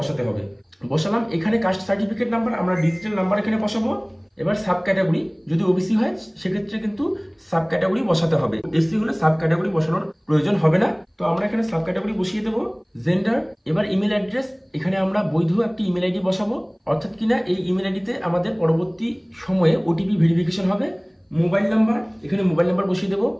হবে। বসালাম। এখানে কাস্ট সার্টিফিকেট নাম্বার, আমরা ডিজিটাল নাম্বার এখানে বসাবো। এবার সাব ক্যাটাগরি, যদি ওবিসি হয় সেক্ষেত্রে কিন্তু সাব ক্যাটাগরি বসাতে হবে। এসসি হলে সাব ক্যাটাগরি বসানোর প্রয়োজন হবে না। তো আমরা এখানে সাব ক্যাটাগরি বসিয়ে দেবো। জেন্ডার, এবার ইমেল অ্যাড্রেস, এখানে আমরা বৈধ একটি ইমেল আইডি বসাবো, অর্থাৎ কিনা এই ইমেল আইডিতে আমাদের পরবর্তী সময়ে ওটিপি ভেরিফিকেশন হবে। মোবাইল নাম্বার, এখানে মোবাইল নাম্বার বসিয়ে দেবো।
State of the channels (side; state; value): both; identical; correlation 1.00